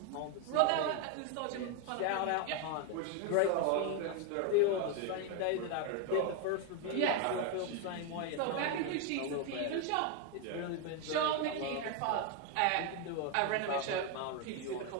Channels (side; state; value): both; different; correlation 0.01